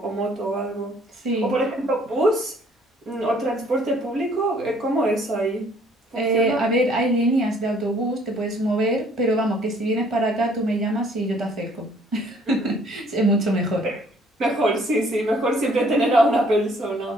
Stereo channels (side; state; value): both; normal; correlation 0.60